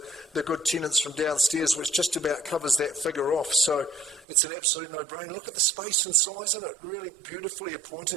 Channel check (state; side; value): drops out; left; at 4.2 s